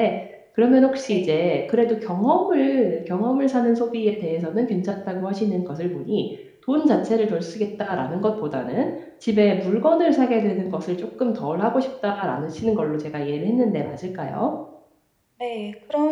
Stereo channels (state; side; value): identical; both; correlation 1.00